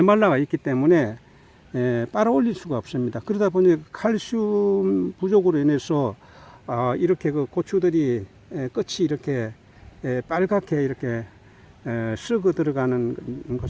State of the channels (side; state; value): both; identical; correlation 1.00